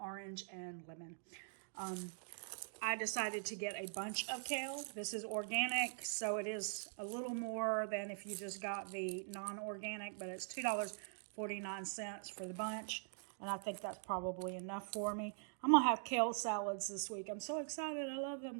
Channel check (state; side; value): silent; left; digital silence